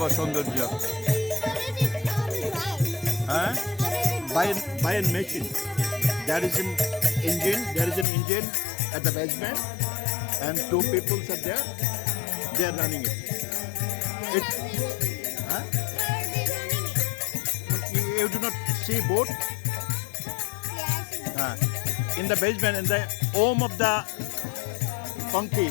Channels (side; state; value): right; drops out; at 8.1 s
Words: সৌন্দর্য হ্যাঁ by a machine. There is an engine at the basement, and two people are there. They are running it. Huh? You do not see boat. In the basement, in the home of the Punky,